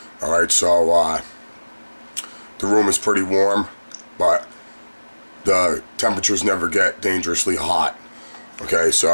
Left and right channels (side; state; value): both; inverted; correlation -1.00